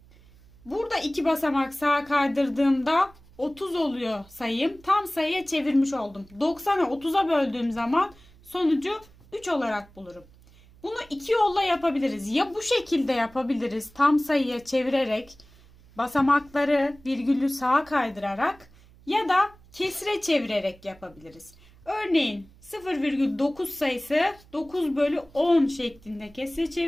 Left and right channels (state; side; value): noise; right; hum, 26 dB below the sound